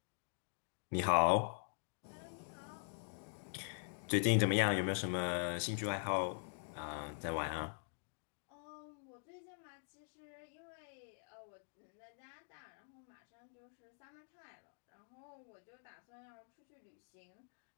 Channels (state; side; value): silent; right; digital silence